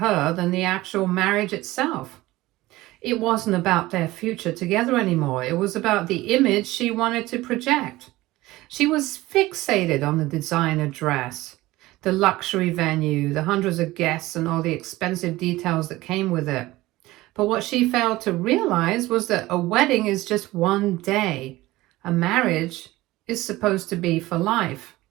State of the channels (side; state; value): left; quieter; 18.3 dB